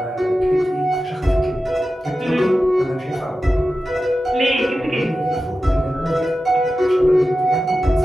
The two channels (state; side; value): normal; both; correlation 0.93